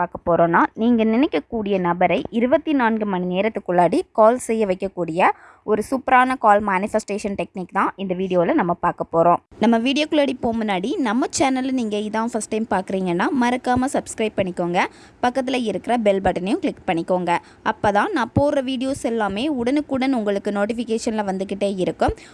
போகிறோன்னா, நீங்கள் நினைக்கக்கூடிய நபரை 24 மணி நேரத்துக்குள்ளாடி கால் செய்ய வைக்கக்கூடிய ஒரு சூப்பரான கால் மேனிஃபெஸ்டேஷன் டெக்னிக் தான் இந்த வீடியோவில் நம்ம பார்க்க போகிறோம். நம்ம வீடியோக்குள்ளாடி போக முன்னாடி நம்ம சேனலில் நீங்கள் இதான் ஃபஸ்ட் டைம் பார்க்குறீங்கன்னா மறக்காமல் சப்ஸ்கிரைப் பண்ணிக்கோங்க. பக்கத்தில் இருக்கிற பெல் பட்டனையும் கிளிக் பண்ணிக்கோங்க. அப்போ தான் நான் போடுற வீடியோஸ் எல்லாமே உடனுக்குடன் உங்களுக்கு நோட்டிஃபிகேஷனில் வந்துக்கிட்டே இருக்கும்.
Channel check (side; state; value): both; identical; correlation 1.00